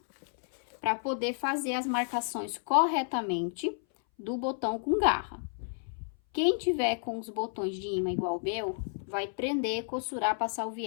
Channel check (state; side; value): silent; right; 57 dB below the other